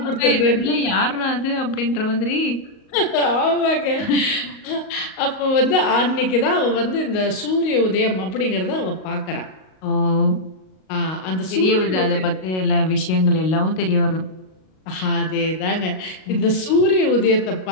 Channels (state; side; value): late; right; 38 ms